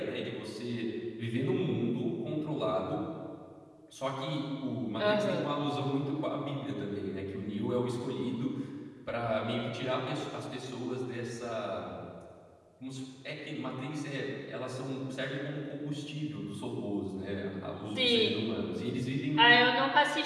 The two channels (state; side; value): identical; both; correlation 1.00